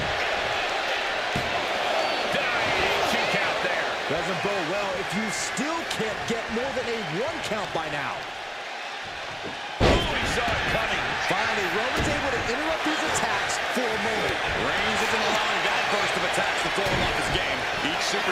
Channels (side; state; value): both; identical; correlation 1.00